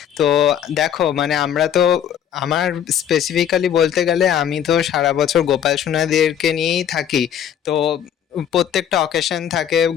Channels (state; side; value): quieter; right; 9.5 dB